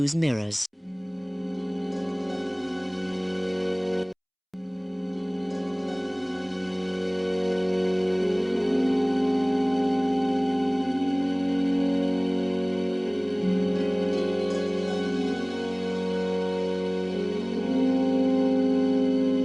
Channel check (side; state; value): both; identical; correlation 1.00